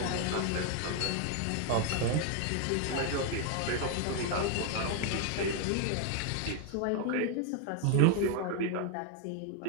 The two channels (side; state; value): both; different; correlation 0.01